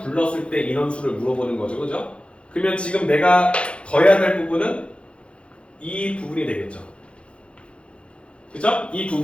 때 인원수를 물어보는 거죠, 그죠? 그러면 지금 내가 더해야 될 부분은 이 부분이 되겠죠. 그죠? 이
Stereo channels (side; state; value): right; late; 0.059 ms